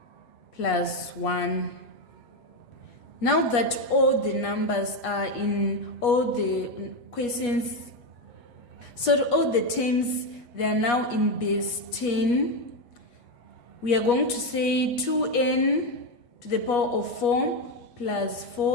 plus 1. Now that all the numbers are in all the questions, so all the terms, they are now in base 10. We are going to say 2n to the power of 4 plus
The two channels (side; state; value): right; late; 8.3 ms